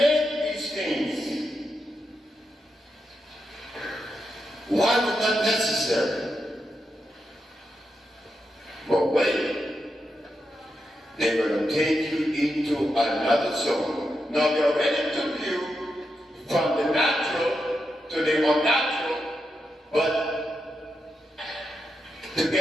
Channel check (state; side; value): normal; both; correlation 0.86